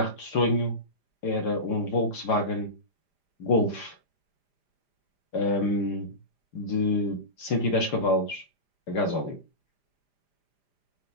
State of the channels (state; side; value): late; right; 5.0 ms